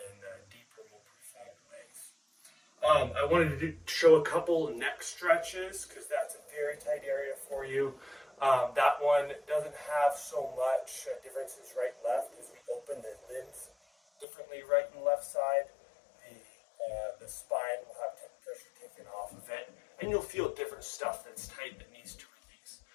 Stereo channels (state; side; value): drops out; right; at 14.2 s